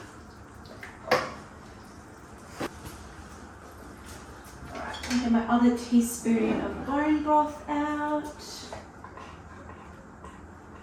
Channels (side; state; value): both; identical; correlation 1.00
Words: another teaspoon of bone broth out.